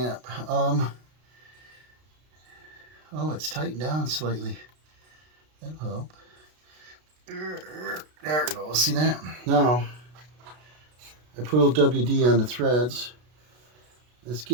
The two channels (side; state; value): left; late; 33 ms